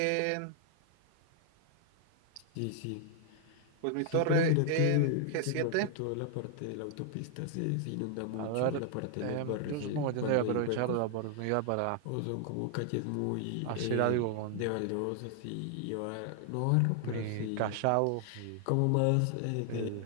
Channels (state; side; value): different; both; correlation 0.00